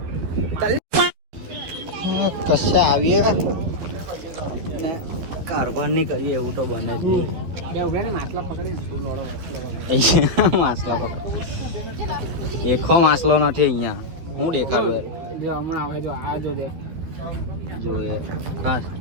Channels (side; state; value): left; late; 12 ms